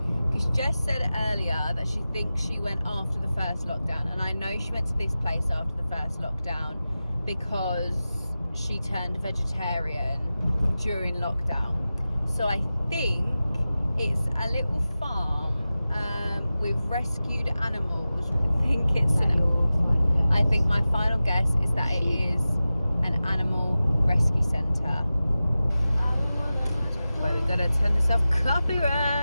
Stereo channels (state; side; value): inverted; both; correlation -0.95